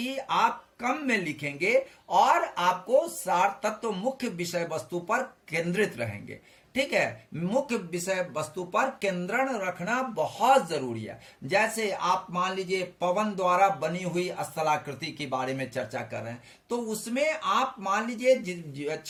आप कम में लिखेंगे और आपको सार तत्व मुख्य विषय वस्तु पर केंद्रित रहेंगे, ठीक है। मुख्य विषय वस्तु पर केंद्रण रखना बहुत जरूरी है। जैसे आप मान लीजिए पवन द्वारा बनी हुई स्थलाकृति के बारे में चर्चा कर रहे हैं तो उसमें आप मान लीजिए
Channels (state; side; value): identical; both; correlation 1.00